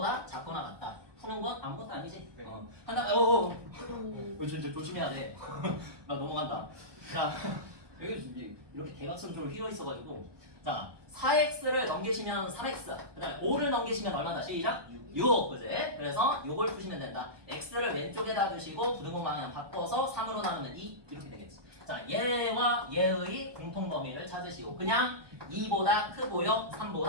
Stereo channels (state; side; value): late; left; 1.2 ms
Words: 작거나 같다. 푸는 건 아무것도 아니지? 네. 한다. 진짜 조심해야 돼. 나 넘어간다. 자 여기 이렇게 대각선으로 휘어 있어가지고 자 4x를 넘기시면 3x 그 다음에 5를 넘기시면 얼마다? 시작? 6 그지? 그래서 6을 푸시면 된다. x를 왼쪽에다 두시고 부등식 방향 바꿔서 3으로 나누면 2 이렇게 되겠지. 자 얘와 얘의 공통 범위를 찾으시고 그냥 2보다 크고요